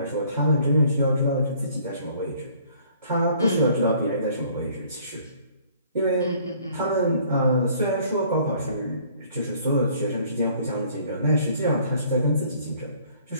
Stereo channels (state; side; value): inverted; both; correlation -0.58